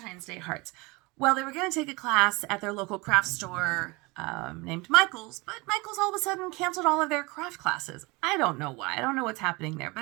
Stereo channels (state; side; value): quieter; left; 25.1 dB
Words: Day hearts. Well, they were going to take a class at their local craft store named Michael's, but Michael's all of a sudden canceled all of their craft classes. I don't know why. I don't know what's happening there.